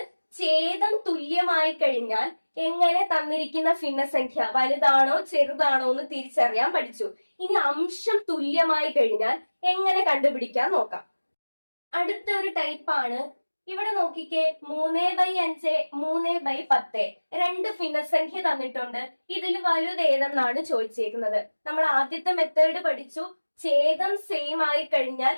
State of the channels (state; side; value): inverted; both; correlation -1.00